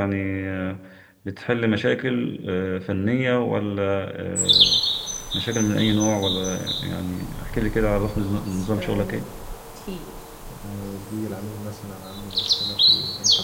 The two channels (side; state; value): both; identical; correlation 1.00